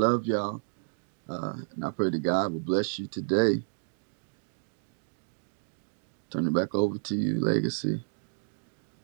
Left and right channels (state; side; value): silent; left; digital silence